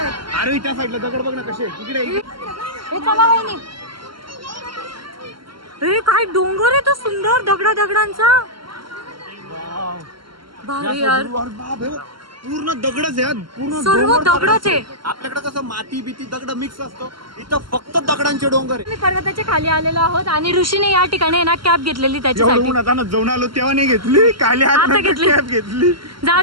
अरे त्या साईडला दगड बघ ना कसे तिकडे. हे चला वहिनी. हे काय डोंगर आहे तो सुंदर दगडांचा. भारी यार. पूर्ण दगडच आहे पूर्ण सर्व दगडच आहे. आपल्याकडे कसं माती बिती दगड मिक्स असतो इथं फक्त दगडांचे डोंगर आहे. मी पर्वताच्या खाली आलेलो आहोत आणि ऋषीने या ठिकाणी ना कॅब घेतलेली त्याच्यासाठी. जाऊन आलो तेव्हा नाही घेतली खाली आता घेतली. कॅब घेतली. जाऊ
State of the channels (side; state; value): left; late; 0.73 ms